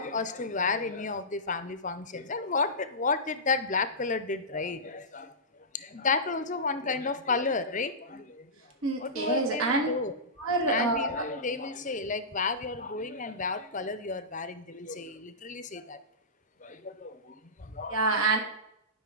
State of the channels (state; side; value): normal; both; correlation -0.18